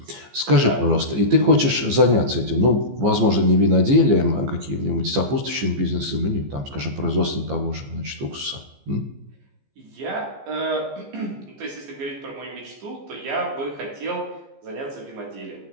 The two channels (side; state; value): left; late; 15 ms